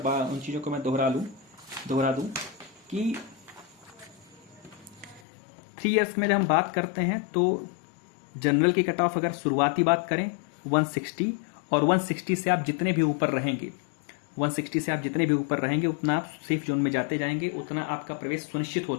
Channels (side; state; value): right; drops out; at 5.2 s